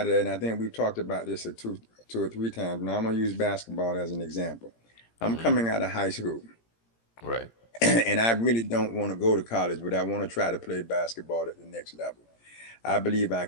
of that, and I think we've talked about this two or three times. Now I'm going to use basketball as an example. I'm Mm-hmm. coming out of high school, Right. and I really don't want to go to college, but I want to try to play basketball at the next level. I believe I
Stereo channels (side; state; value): right; late; 17 ms